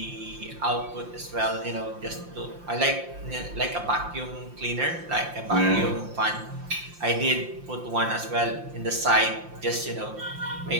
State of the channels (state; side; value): late; left; 5.7 ms